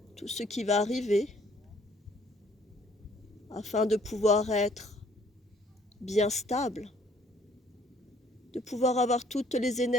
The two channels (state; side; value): normal; both; correlation 0.61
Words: tout ce qui va arriver, afin de pouvoir être bien stable, de pouvoir avoir toutes les